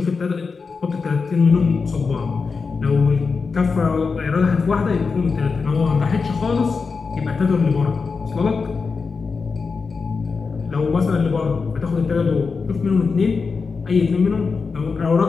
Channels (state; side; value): quieter; right; 4.8 dB